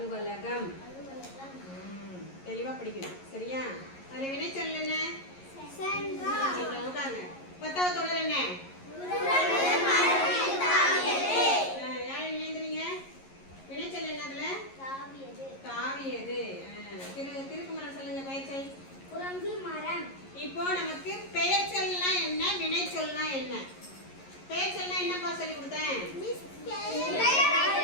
தெளிவா படிக்கணும். சரியா? அதுல வினைச்சொல் என்ன? உட்காருங்க. பத்தாவது தொடர் என்ன? யார் எழுதுறீங்க? வினைச்சொல் என்ன அதுல? தாவியது. திருக்குமரன் சொல்லுங்க பெயர்ச்சொல். குரங்கு மரம். இப்போ நமக்கு பெயர்ச்சொல்னா என்ன, வினைச்சொல்னா என்ன? பெயர்ச்சொல்னா என்னப்பா சொல்லி கொடுத்தேன்?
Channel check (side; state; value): right; late; 11 ms